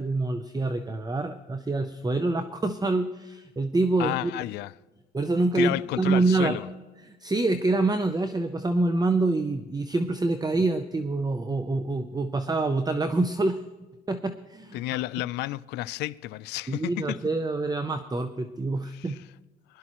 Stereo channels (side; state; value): both; normal; correlation 0.75